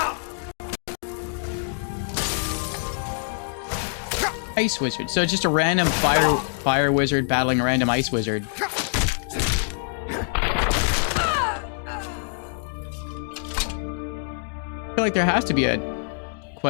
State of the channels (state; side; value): silent; right; digital silence